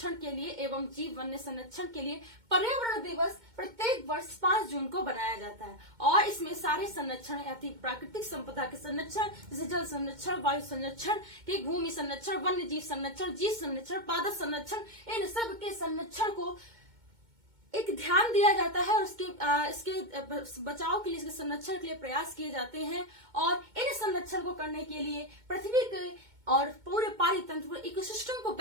के लिए एवं जीव वन्य संरक्षण के लिए पर्यावरण दिवस प्रत्येक वर्ष 5 जून को बनाया जाता है। और इसमें सारे संरक्षण यानी प्राकृतिक संपदा के संरक्षण जैसे जल संरक्षण, वायु संरक्षण, भूमि संरक्षण, वन्य जीव संरक्षण, जीव संरक्षण, पादप संरक्षण, इन सब के संरक्षण को एक ध्यान दिया जाता है और इसके बचाव के लिए, इसके संरक्षण के लिए प्रयास किए जाते हैं। और इन संरक्षण को करने के लिए पृथ्वी के और पूरे पारितंत्र इकोसिस्टम को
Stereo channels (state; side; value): late; left; 2.2 ms